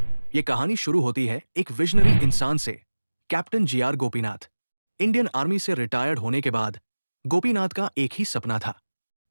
ये कहानी शुरू होती है एक विजनरी इंसान से, captain GR Gopinath. Indian army से रिटायर्ड होने के बाद गोपीनाथ का एक ही सपना था,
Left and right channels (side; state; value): both; inverted; correlation -1.00